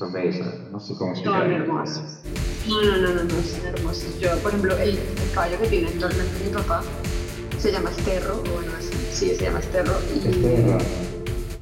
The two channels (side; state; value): both; identical; correlation 1.00